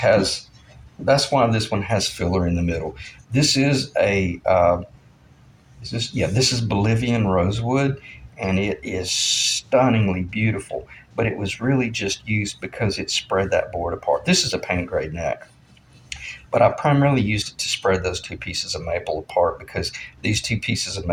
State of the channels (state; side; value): identical; both; correlation 1.00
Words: that's why this one has filler in the middle. This is a is this, yeah, this is Bolivian rosewood, and it is stunningly beautiful. But it was really just used because it spread that board apart. This is a paint grade neck, but I primarily used it to spread those two pieces of maple apart because these two pieces of